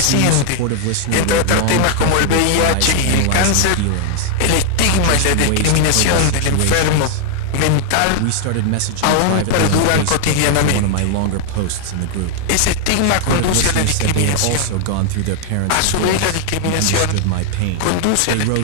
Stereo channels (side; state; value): both; different; correlation 0.00